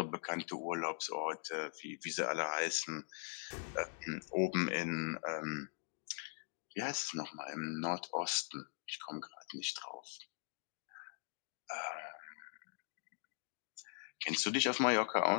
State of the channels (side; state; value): right; silent; digital silence